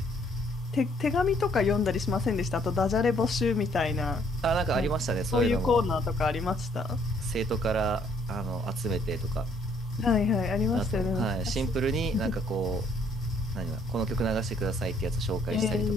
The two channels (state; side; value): normal; both; correlation 0.65